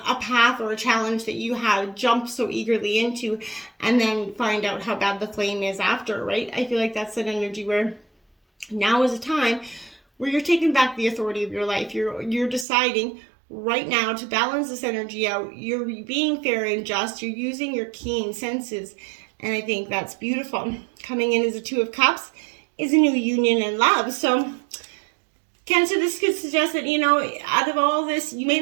a path or a challenge that you have jumped so eagerly into and then find out how bad the flame is after, right? I feel like that's an energy where now is a time where you're taking back the authority of your life. You're deciding right now to balance this energy out. You're being fair and just. You're using your keen senses. And I think that's beautiful. Coming in as a Two of Cups is a new union and love. So Cancer, this could suggest that, out of all this, you may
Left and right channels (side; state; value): left; drops out; at 12.7 s